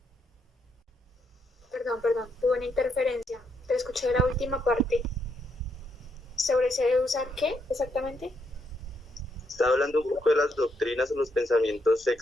Perdón, tuve una interferencia. Te escuché la última parte. ¿Sobre se debe usar qué exactamente? Estaba hablando un poco de las doctrinas o los pensamientos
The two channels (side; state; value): both; normal; correlation 0.77